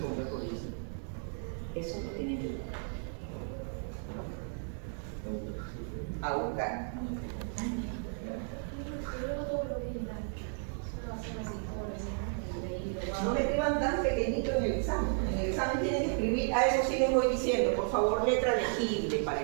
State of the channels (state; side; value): silent; left; 55 dB below the other